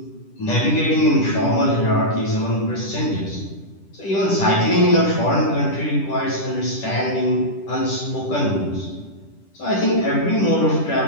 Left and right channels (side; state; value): right; late; 10 ms